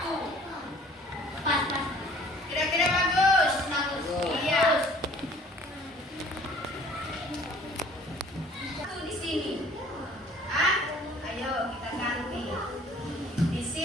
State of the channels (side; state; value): both; normal; correlation 0.52